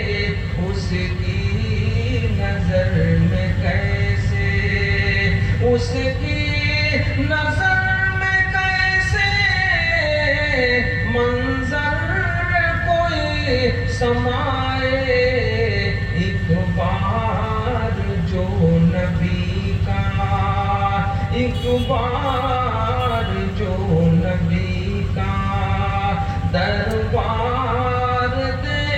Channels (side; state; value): both; identical; correlation 1.00